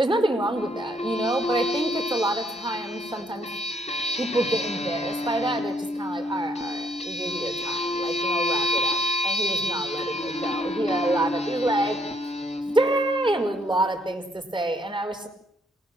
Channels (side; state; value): both; normal; correlation 0.69